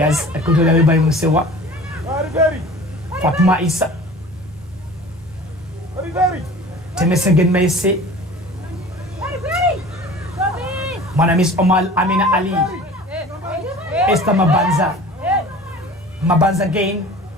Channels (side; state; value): both; normal; correlation 0.42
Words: are controlled away by Musewa. Fatma Issa. Temesegen Meise. Mwanamis Omal Amina Ali. Esther Mabanza. Mabanza again.